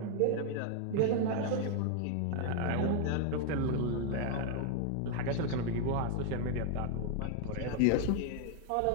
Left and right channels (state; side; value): different; both; correlation 0.00